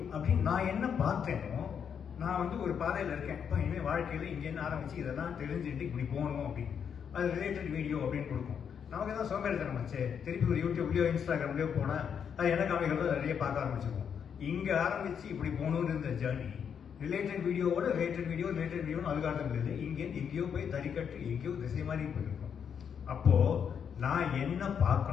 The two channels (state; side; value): quieter; right; 7.5 dB